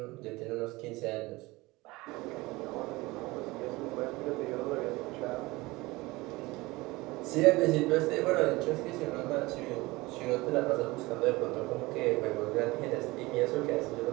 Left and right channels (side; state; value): left; quieter; 21.4 dB